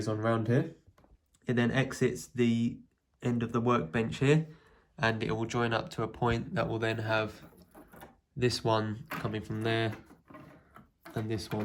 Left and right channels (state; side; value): identical; both; correlation 1.00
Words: on round here. It then exits the end of the workbench here, and it will join up to a point that will then have this one coming from there and this